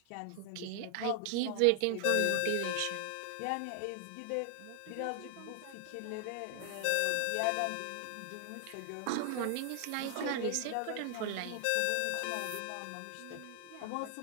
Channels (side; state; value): both; different; correlation 0.00